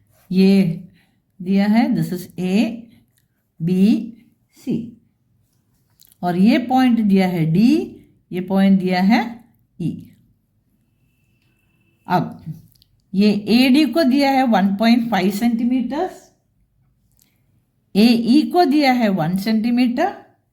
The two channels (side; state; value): both; identical; correlation 1.00